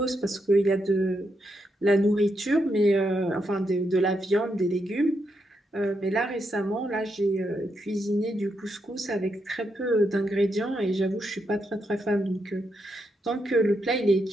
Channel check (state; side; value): normal; both; correlation 0.82